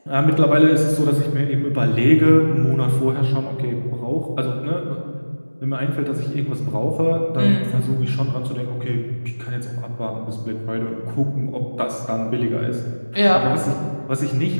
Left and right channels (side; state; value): both; inverted; correlation -1.00